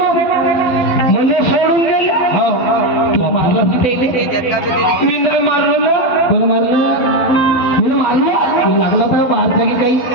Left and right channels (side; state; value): right; late; 12 ms